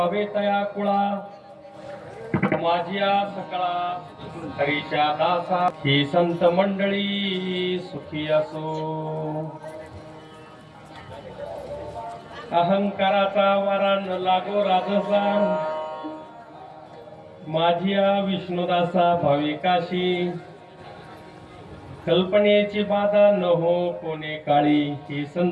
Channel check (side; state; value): both; identical; correlation 1.00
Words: तया कुळा माझिया सकळा हरीच्या दासा ही संत मंडळी सुखी असो। अहंकाराचा वारा न लागो राजसा माझिया विष्णुदासा भाविकाशी कल्पनेची बाधा न हो कोणे काळी ही